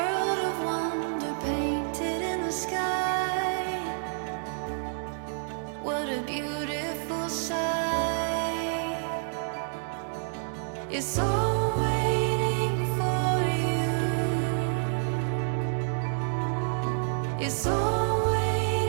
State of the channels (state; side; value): silent; left; digital silence